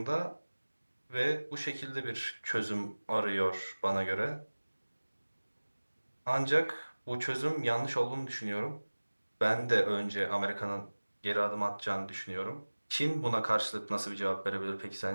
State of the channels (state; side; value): inverted; both; correlation -1.00